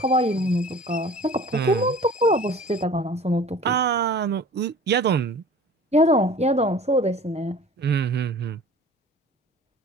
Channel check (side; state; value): both; normal; correlation 0.44